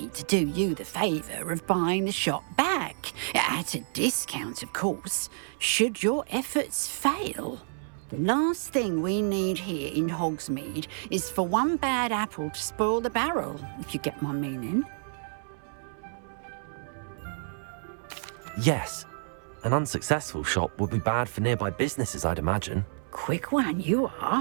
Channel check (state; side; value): silent; left; 58 dB below the other